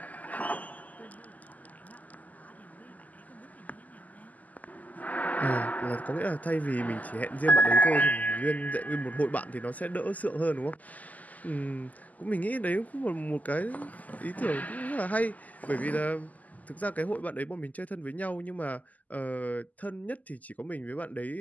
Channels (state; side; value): late; right; 0.078 ms